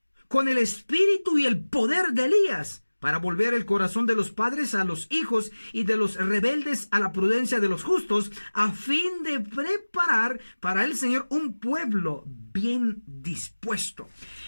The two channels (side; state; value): both; inverted; correlation -1.00